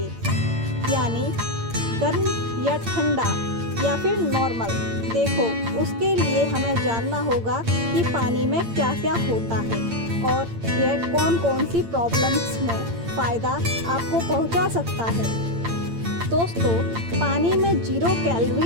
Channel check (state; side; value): late; left; 8.8 ms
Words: यानी गर्म या ठंडा या फिर नॉर्मल। देखो, उसके लिए हमें जानना होगा कि पानी में क्या क्या होता है और यह कौन कौन सी प्रॉब्लम्स में फ़ायदा आपको पहुंचा सकता है। दोस्तों, पानी में 0